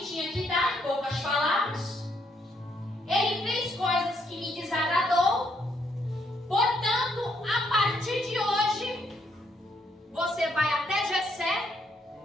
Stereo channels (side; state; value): both; normal; correlation 0.73